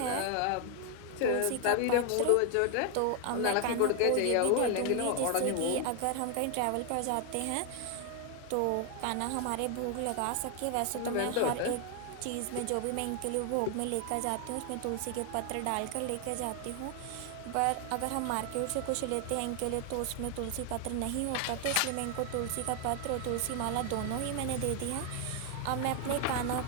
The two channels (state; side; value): different; both; correlation 0.00